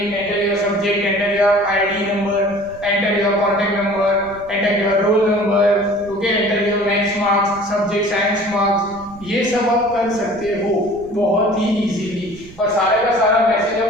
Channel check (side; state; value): right; noise; rumble, 21 dB below the sound